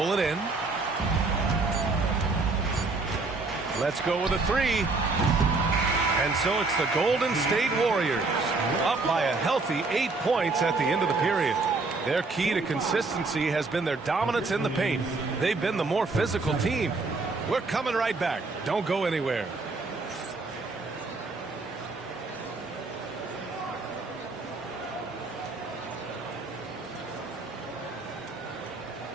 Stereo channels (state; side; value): quieter; left; 3.7 dB